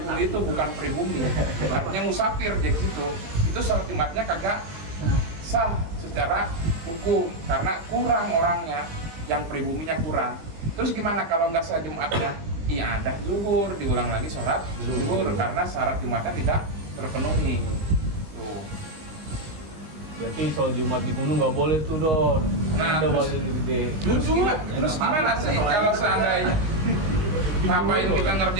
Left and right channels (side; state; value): left; late; 20 ms